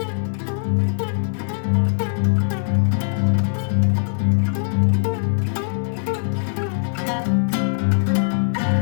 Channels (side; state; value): right; silent; digital silence